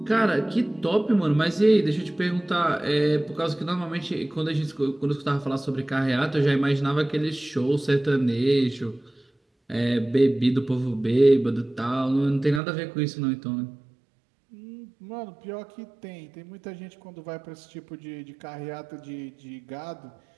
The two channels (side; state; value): left; drops out; at 12.6 s